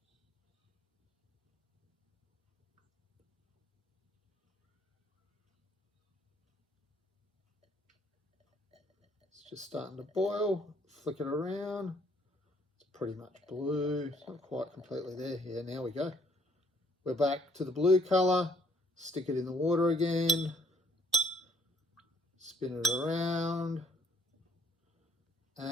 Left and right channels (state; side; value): normal; both; correlation 0.63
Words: Just starting to boil, flick it around. It's pretty much blue. It's not quite completely there. Yeah, now we go. We're back to the blue colour. Stick it in the water again. Spin it around.